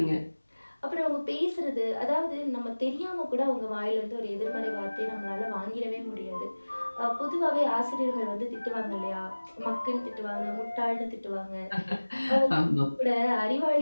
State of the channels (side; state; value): both; inverted; correlation -1.00